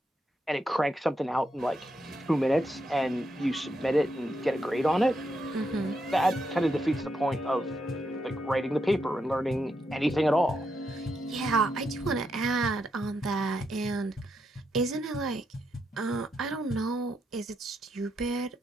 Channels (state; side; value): normal; both; correlation 0.81